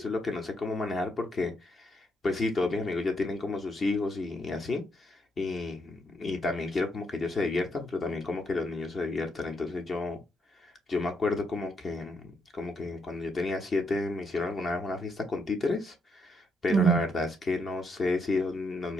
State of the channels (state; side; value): normal; both; correlation 0.77